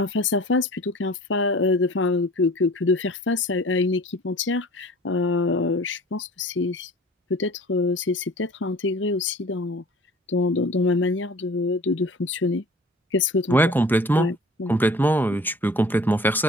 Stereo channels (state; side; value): normal; both; correlation 0.44